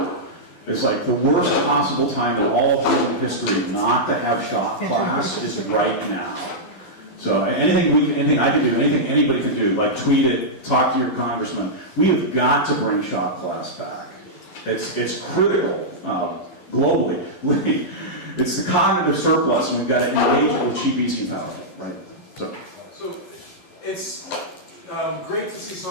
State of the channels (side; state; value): right; late; 11 ms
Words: It's like the worst possible time in all of human history not to have shop class is right now. So anything I can do, anything anybody can do, like tweet it, talk to your congressman. We have got to bring shop class back. It's critical globally. It's the cognitive surplus, and we've got to engage with cheap, easy power, right? So it's great to see